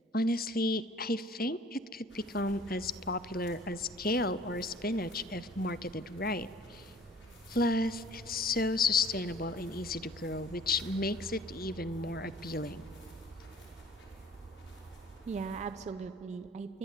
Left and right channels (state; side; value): normal; both; correlation 0.52